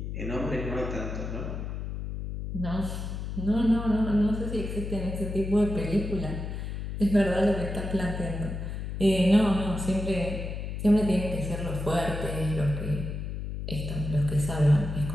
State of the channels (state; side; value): noise; left; hum, 5 dB below the sound